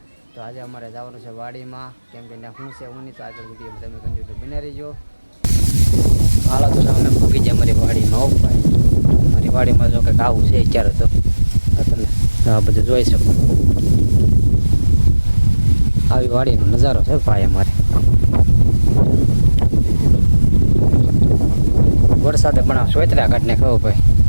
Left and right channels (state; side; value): inverted; both; correlation -1.00